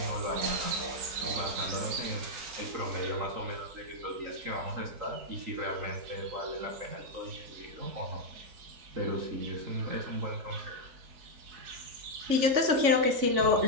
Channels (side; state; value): left; late; 3.5 ms